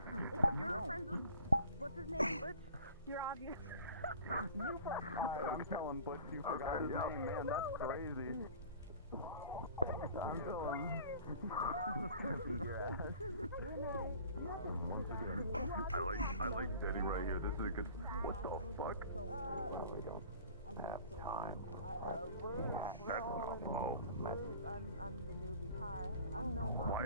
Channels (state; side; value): inverted; both; correlation -0.45